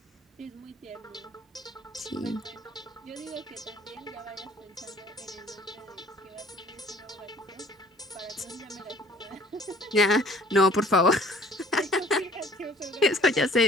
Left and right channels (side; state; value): both; normal; correlation 0.54